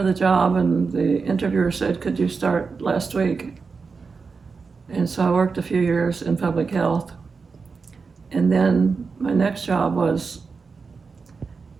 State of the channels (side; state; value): left; quieter; 4.9 dB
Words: the job, and the interviewer said, could you start last week? And so I worked a few years in public health. And then my next job was